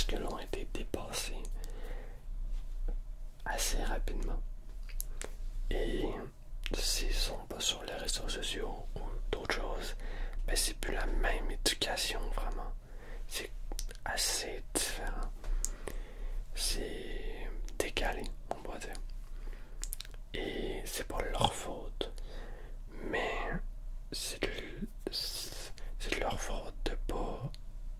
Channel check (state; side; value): identical; both; correlation 1.00